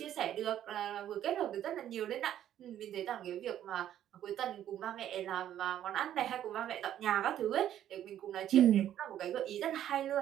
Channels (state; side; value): quieter; left; 11.2 dB